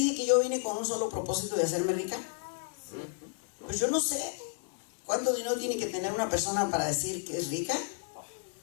que yo vine con un solo propósito de hacerme rica? Pues yo no sé cuánto dinero tiene que tener una persona para decir que es rica,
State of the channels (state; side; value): silent; right; 56 dB below the other